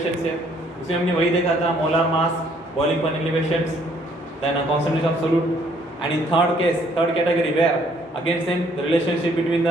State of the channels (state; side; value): normal; both; correlation 0.64